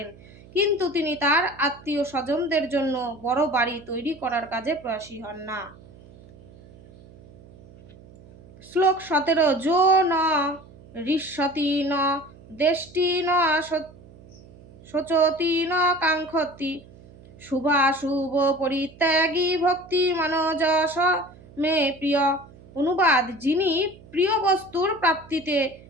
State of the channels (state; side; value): noise; right; hum, 22 dB below the sound